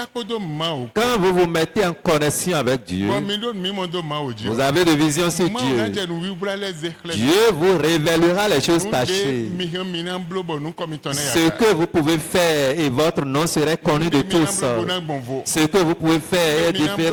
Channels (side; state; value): both; identical; correlation 1.00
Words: quand vous vous mettez en connexion avec Dieu, vous avez de vision sur Dieu. Dieu vous révélera les choses cachées. Ce que vous pouvez faire et votre nom serait connu de tous. Ce que vous pouvez faire est